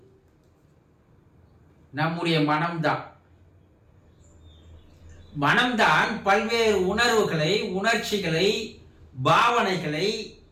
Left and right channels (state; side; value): identical; both; correlation 1.00